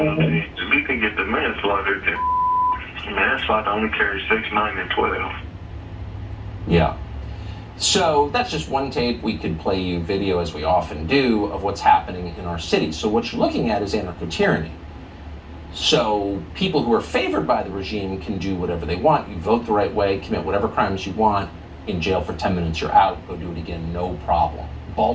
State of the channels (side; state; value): both; identical; correlation 1.00